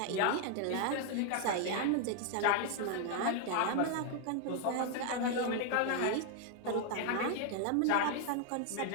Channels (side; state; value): both; different; correlation 0.00